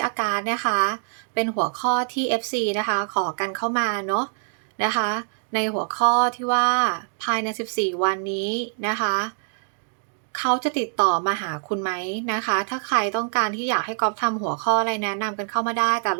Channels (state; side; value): silent; left; digital silence